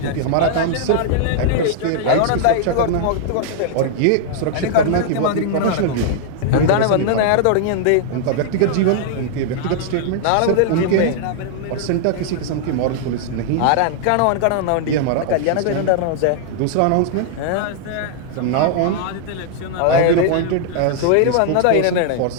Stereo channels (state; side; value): different; both; correlation -0.01